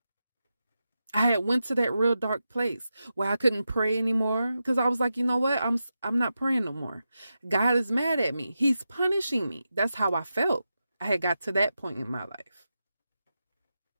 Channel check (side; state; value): both; inverted; correlation -0.89